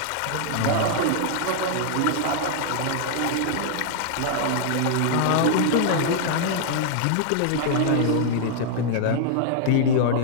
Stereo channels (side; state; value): both; different; correlation -0.01